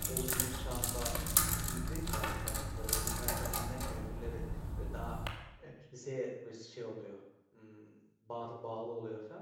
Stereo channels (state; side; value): identical; both; correlation 1.00